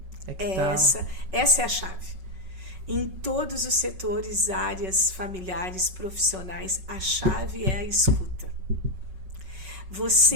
é que essa é a chave. Em todos os setores, áreas familiares, profissionais, a chave é a escuta.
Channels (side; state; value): left; late; 5.4 ms